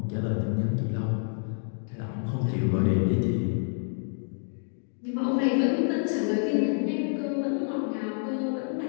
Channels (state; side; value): silent; right; 59 dB below the other